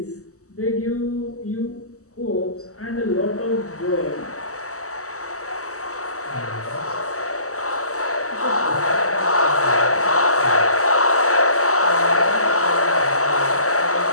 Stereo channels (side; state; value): right; late; 0.65 ms